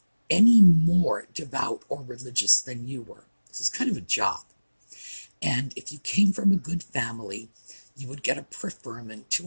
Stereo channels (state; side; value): inverted; both; correlation -1.00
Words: any more devout or religious than you were. This is kind of a job. And if you came from a good family, you would get a preferment